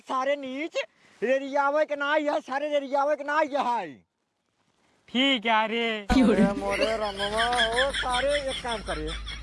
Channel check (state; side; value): identical; both; correlation 1.00